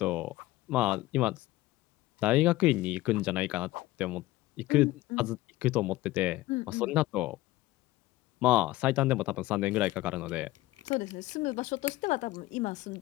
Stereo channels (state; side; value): quieter; right; 17.6 dB